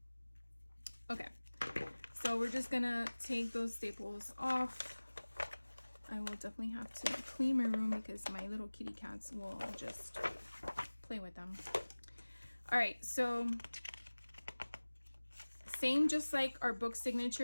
Okay, so we're just gonna take those staples off. I will definitely have to clean my room because my little kitty cats will just play with them. All right, so same, just like our book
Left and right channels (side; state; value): both; inverted; correlation -1.00